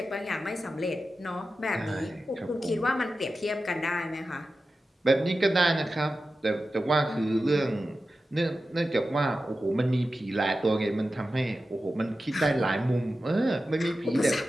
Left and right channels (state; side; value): normal; both; correlation 0.93